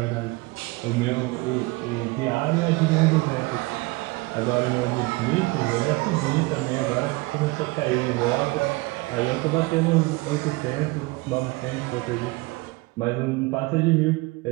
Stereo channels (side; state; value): left; quieter; 23.3 dB